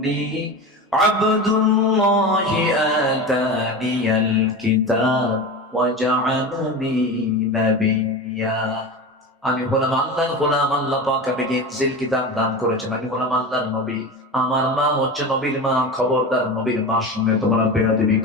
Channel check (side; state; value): both; normal; correlation 0.27